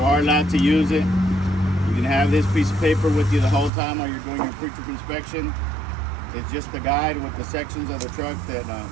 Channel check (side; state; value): left; drops out; at 3.7 s